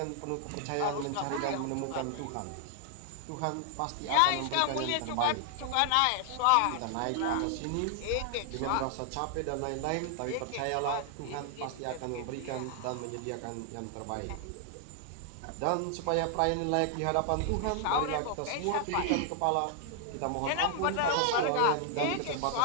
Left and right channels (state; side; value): different; both; correlation 0.00